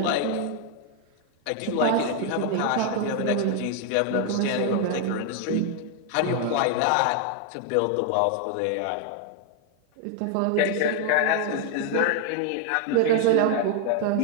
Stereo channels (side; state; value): both; different; correlation 0.00